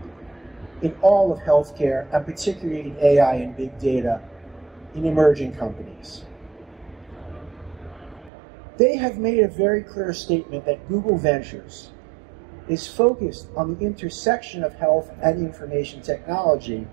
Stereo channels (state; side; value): drops out; left; at 8.3 s